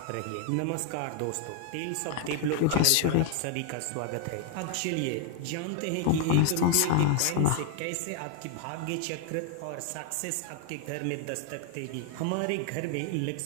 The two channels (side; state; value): both; different; correlation 0.00